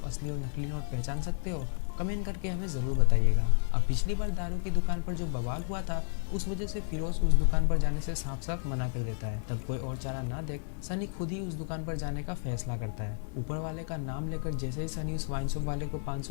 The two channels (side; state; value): right; silent; 56 dB below the other